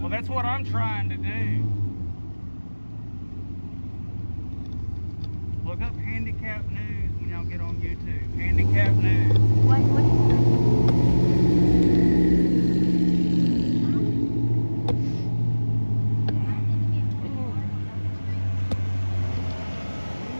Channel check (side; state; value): both; inverted; correlation -1.00